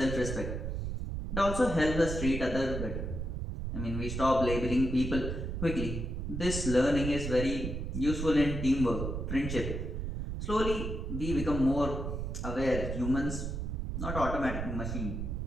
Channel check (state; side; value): noise; right; rumble, 3 dB below the sound